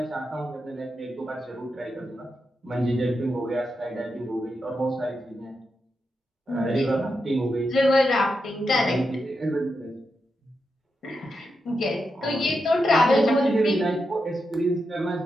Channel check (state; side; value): normal; both; correlation 0.86